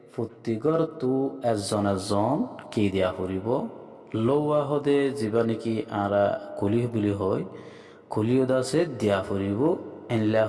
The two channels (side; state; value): both; identical; correlation 1.00